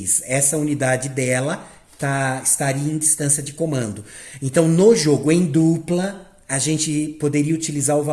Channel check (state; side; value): identical; both; correlation 1.00